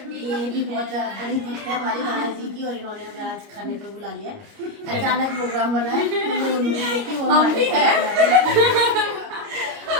ये भी बहुत बड़ी भक्त है हमारी कान्हा जी की, और इन्होंने हमें आज खाने पे बुला लिया है। अचानक प्रोग्राम बना है, हम भी है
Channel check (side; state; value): left; late; 29 ms